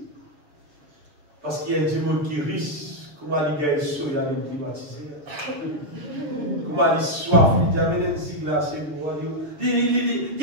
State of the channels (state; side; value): late; left; 6.8 ms